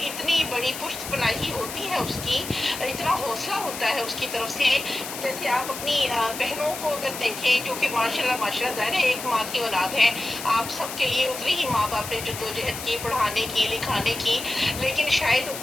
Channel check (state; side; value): noise; left; hiss, 9 dB below the sound